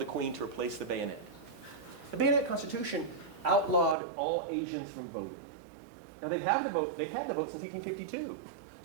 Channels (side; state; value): left; drops out; at 4.0 s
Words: Queen to replace the bayonet. The bayonet constitution outlawed all Asians from voting. Now they've had the vote since 1852.